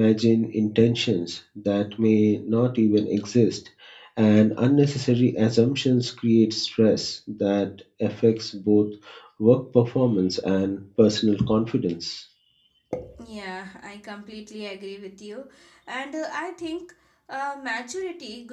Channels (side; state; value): both; identical; correlation 1.00